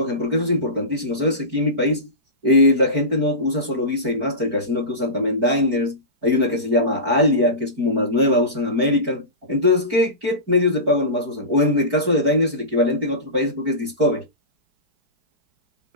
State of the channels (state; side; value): late; left; 4.5 ms